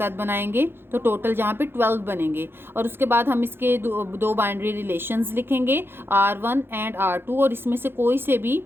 बनाएंगे, तो टोटल यहाँ पे 12 बनेंगे। और उसके बाद हम इसके दो बाइनरी रिलेशंस लिखेंगे, R1 एंड R2, और इसमें से कोई से भी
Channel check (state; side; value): late; left; 0.11 ms